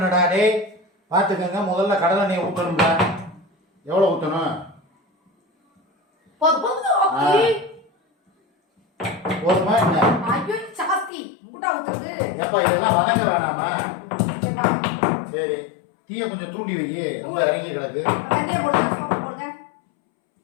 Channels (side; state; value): right; drops out; at 11.1 s